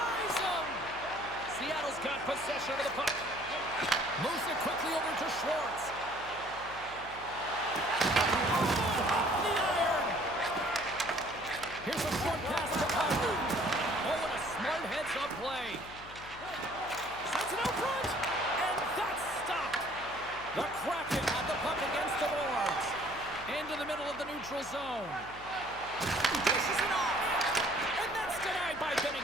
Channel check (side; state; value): left; noise; hum, 18 dB below the sound